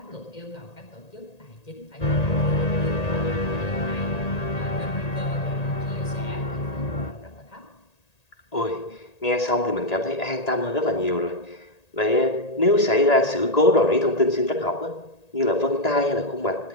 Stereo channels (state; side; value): late; right; 1.8 ms